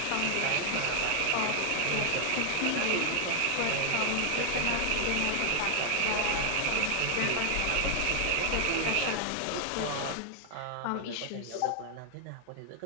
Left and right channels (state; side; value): different; both; correlation 0.00